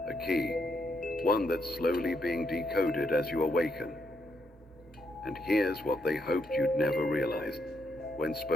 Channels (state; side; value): normal; both; correlation 0.78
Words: a key, one that's slowly being decoded as you awaken. And here's what they hoped you'd never realize. When